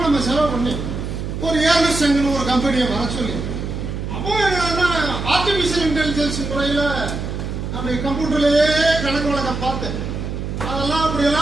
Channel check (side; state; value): right; noise; hum, 5 dB below the sound